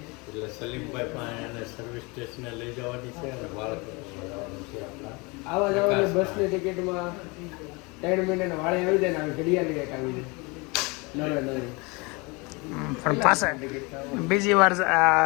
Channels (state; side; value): quieter; right; 27.3 dB